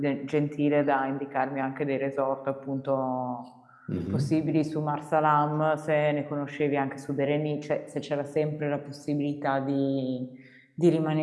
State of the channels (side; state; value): both; identical; correlation 1.00